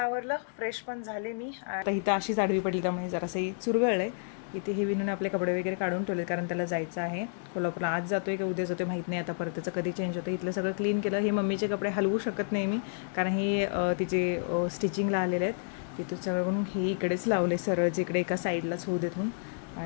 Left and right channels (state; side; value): silent; right; digital silence